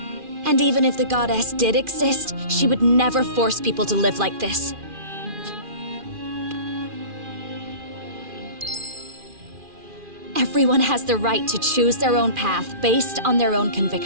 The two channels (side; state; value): left; late; 2.4 ms